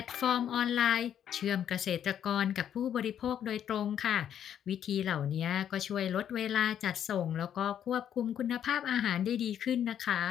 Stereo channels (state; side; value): quieter; right; 9.6 dB